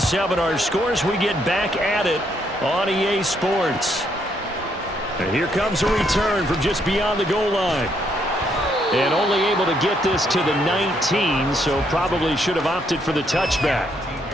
our scores. We get back at it on EA Sports. And here comes a return from just beyond the goal line. And only able to get this to the 19, so probably should have opted for the touchback.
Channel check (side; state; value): both; normal; correlation 0.73